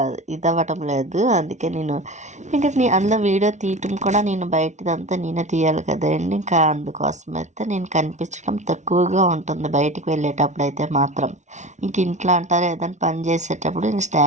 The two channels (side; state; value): left; late; 0.34 ms